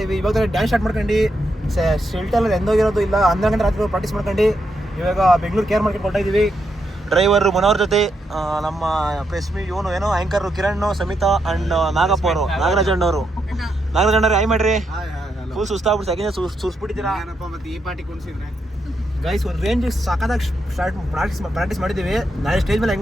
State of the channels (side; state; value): both; normal; correlation 0.81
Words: ಇದ್ವಿ. ಇವಾಗ ಡ್ಯಾನ್ಸ್ ಸ್ಟಾರ್ಟ್ ಮಾಡ್ಕೊಂಡು ಶೆಲ್ಟರ್ ಎಂದೋಗಿರೋದು ಇಲ್ಲ. 12 ಗಂಟೆ ರಾತ್ರಿ ಪ್ರಾಕ್ಟೀಸ್ ಮಾಡ್ಕೊಂಡು ಇವಾಗ ಬೆಂಗಳೂರು ಕೇರ್ ಮಾರ್ಕೆಟ್ ಕೊಡ್ತಾ ಇದೀವಿ. ಡ್ರೈವರ್ ಮನೋಹರ್ ಜೊತೆ ನಮ್ಮ ಪ್ರೆಸ್ಮಿ ಇವನು ಏನೋ ಆಂಕರ್ ಕಿರಣ್, ಸಮಿತಾ ಅಂಡ್ ನಾಗಪ್ಪ ಅವರು, ನಾಗರಾಜ್ ಅಣ್ಣವರು. ಆಯ್ ಮಾಡ್ರಿ, ಫುಲ್ ಸುಸ್ತಾಗ್ಬಿಟ್ಟು ಸೆಕೆಂಡ್ ಸುಸ್ಬಿಟ್ಟಿದ್ದೀರಾ. ಗೈಸ್ ಒಂದು ರೇಂಜ್ ಸಾಕಾದಾಗ ಪ್ರಾಕ್ಟೀಸ್ ಮಾಡಿದ್ದೀವಿ. ನಾಳೆ ಸ್ಟೇಜ್ ಮೇಲೆ